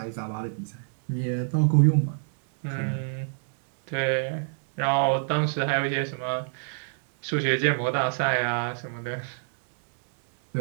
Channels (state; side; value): silent; left; digital silence